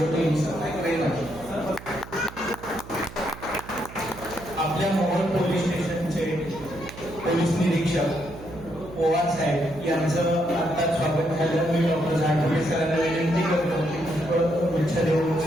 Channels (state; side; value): noise; right; hum, 16 dB below the sound